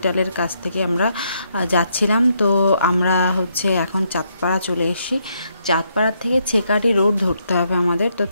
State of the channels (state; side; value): inverted; both; correlation -0.75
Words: কাছ থেকে আমরা যাচ্ছিলাম, তো আমরা এখন চাঁদপাড়া চলে এসেছি। চাঁদপাড়ার থেকে ছেকাটি রোড ধরতে হবে আমাদের। তো